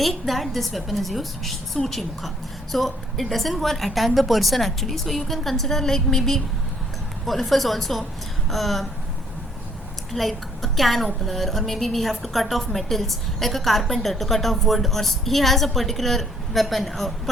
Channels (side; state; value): both; normal; correlation 0.64